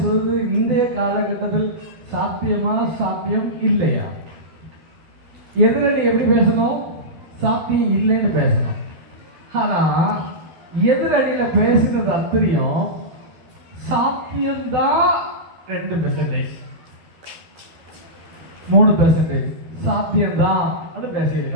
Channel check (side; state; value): left; late; 12 ms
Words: இந்திய காலகட்டத்தில் சாத்தியமா சாத்தியம் இல்லையா? எதிரணி எப்படி பேசணும்? சாத்தியம் இல்லைன்னு பேசணும். ஆனா எதிரணியில பேசுறது அத்தனையும் சாத்தியம்தான் 2%, 3% சாத்தியம்தான் அப்படின்னு